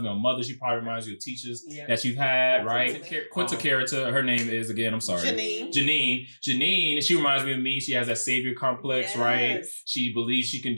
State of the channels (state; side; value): inverted; both; correlation -1.00